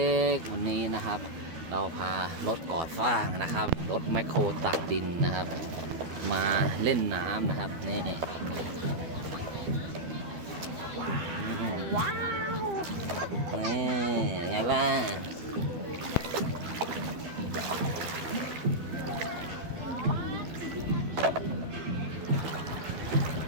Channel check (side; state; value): left; late; 12 ms